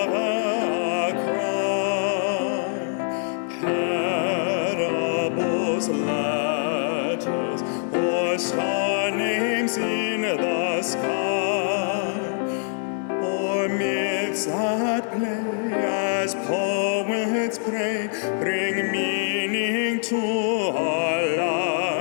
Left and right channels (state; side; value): silent; right; digital silence